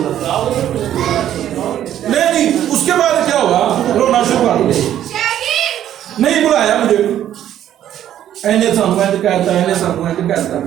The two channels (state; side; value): quieter; left; 11.3 dB